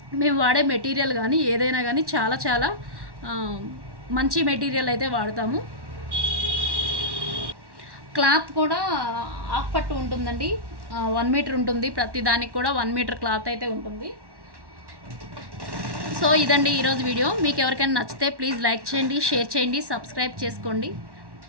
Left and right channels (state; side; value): late; left; 1.1 ms